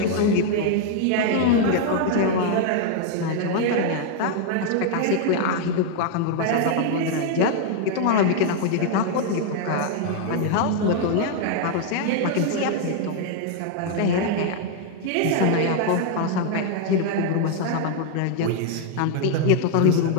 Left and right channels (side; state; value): both; different; correlation 0.00